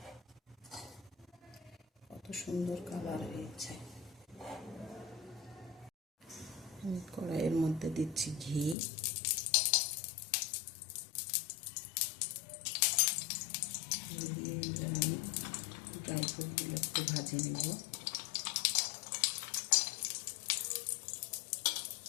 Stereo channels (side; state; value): right; drops out; at 8.8 s